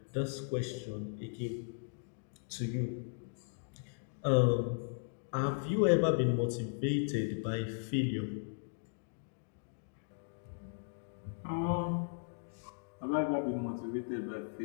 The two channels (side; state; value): right; silent; digital silence